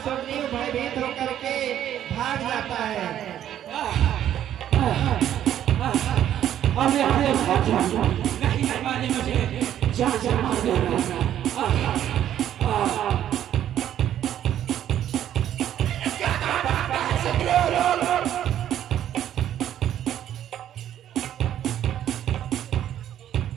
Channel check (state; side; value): quieter; left; 11.0 dB